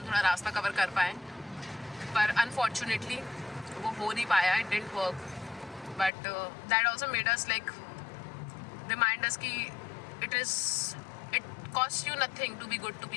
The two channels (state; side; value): drops out; right; at 6.1 s